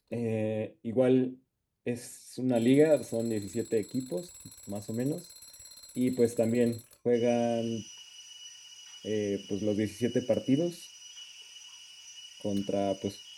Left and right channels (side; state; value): both; identical; correlation 1.00